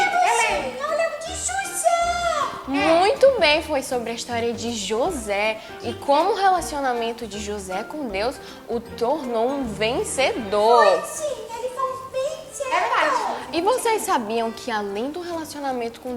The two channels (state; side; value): identical; both; correlation 1.00